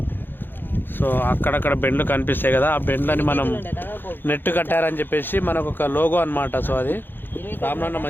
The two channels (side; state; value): right; late; 0.098 ms